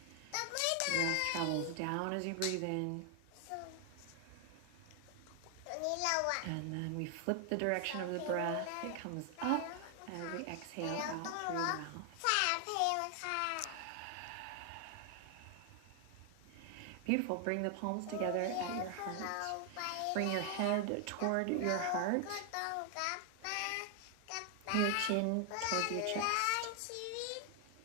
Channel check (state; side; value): different; both; correlation 0.00